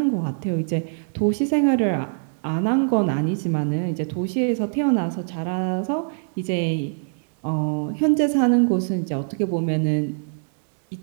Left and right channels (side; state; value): left; silent; 63 dB below the other